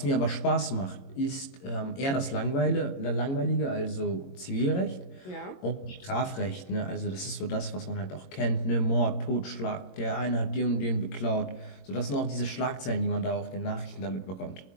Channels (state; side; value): late; right; 22 ms